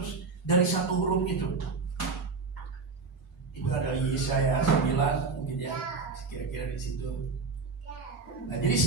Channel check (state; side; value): quieter; left; 4.4 dB